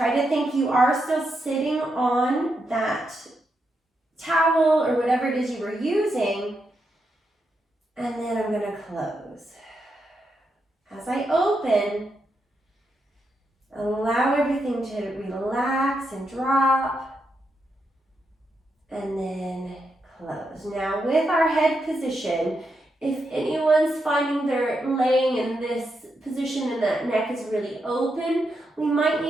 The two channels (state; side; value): normal; both; correlation 0.83